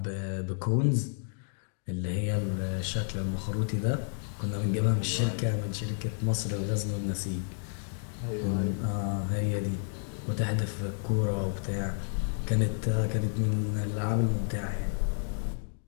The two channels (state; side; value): silent; right; 57 dB below the other